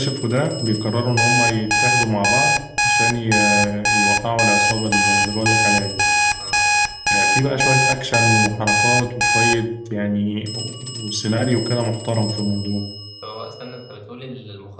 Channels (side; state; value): both; identical; correlation 1.00